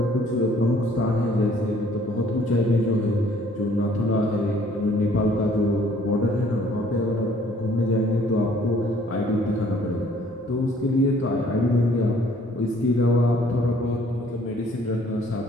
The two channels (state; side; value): normal; both; correlation 0.59